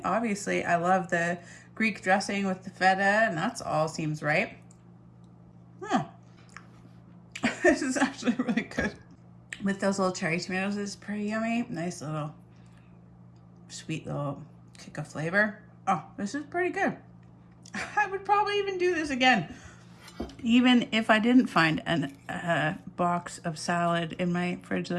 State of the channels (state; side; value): identical; both; correlation 1.00